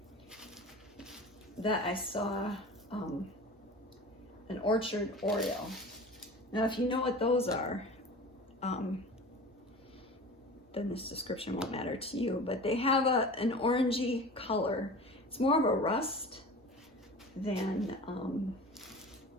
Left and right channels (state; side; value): normal; both; correlation 0.37